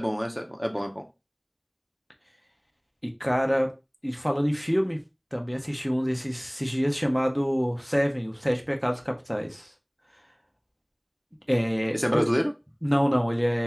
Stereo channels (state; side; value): identical; both; correlation 1.00